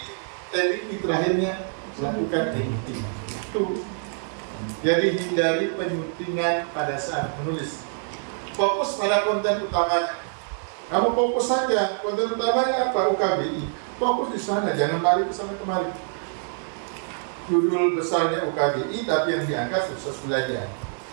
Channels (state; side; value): silent; left; 57 dB below the other